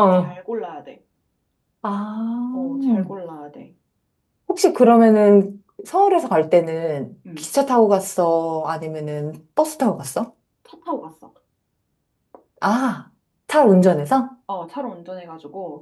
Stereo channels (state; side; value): identical; both; correlation 1.00